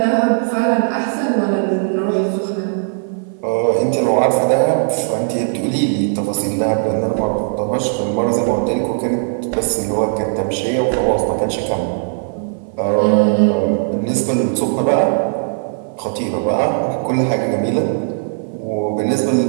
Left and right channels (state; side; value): silent; left; 57 dB below the other